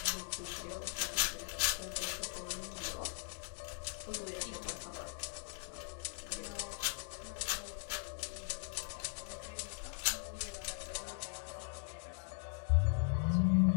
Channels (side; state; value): right; silent; 51 dB below the other